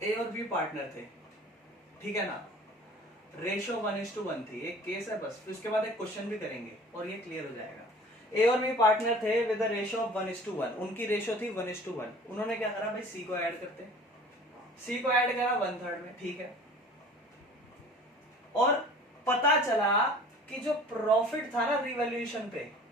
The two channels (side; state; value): both; normal; correlation 0.46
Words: ए और बी पार्टनर थे, ठीक है ना, रेशो 1:1 थी, एक केस है बस, उसके बाद एक क्वेश्चन भी करेंगे और ये क्लियर हो जाएगा। ए और बी पार्टनर थे विद द रेशो ऑफ 1:1, उनकी रेशो थी 1:1। उन्होंने क्या करा भाई, सी को ऐड करते, सी को ऐड करा 1/3 में, ठीक है। और पता चला कि जो प्रॉफिट था ना रिवैल्यूएशन पे,